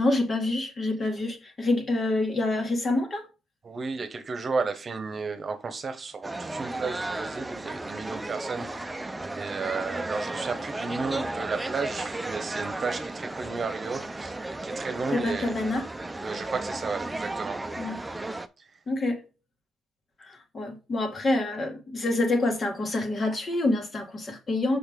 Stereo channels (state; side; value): normal; both; correlation 0.84